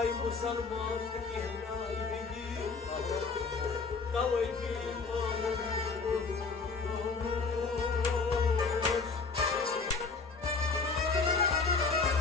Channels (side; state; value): right; quieter; 4.6 dB